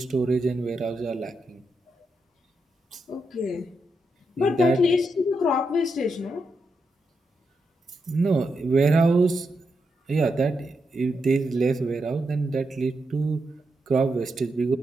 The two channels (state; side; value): normal; both; correlation 0.84